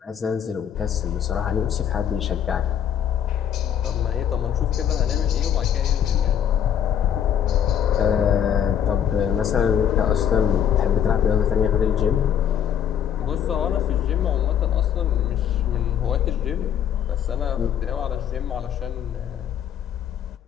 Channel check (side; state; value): right; quieter; 9.1 dB